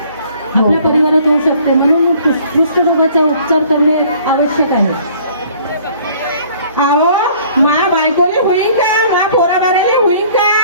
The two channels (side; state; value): both; inverted; correlation -0.55